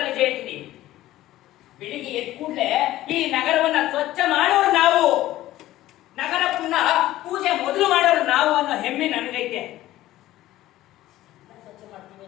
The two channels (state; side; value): quieter; right; 15.2 dB